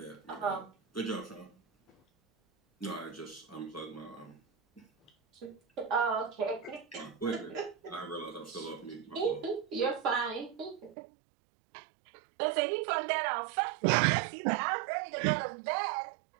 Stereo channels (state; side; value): drops out; left; at 11.0 s